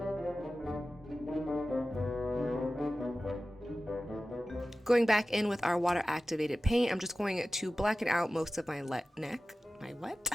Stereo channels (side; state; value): both; normal; correlation 0.95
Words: Going back in with our water activated paint, I'm just going to blacken out most of my neck.